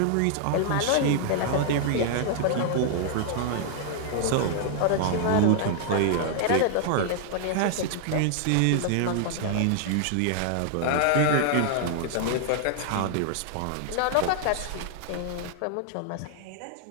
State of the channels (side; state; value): both; different; correlation -0.01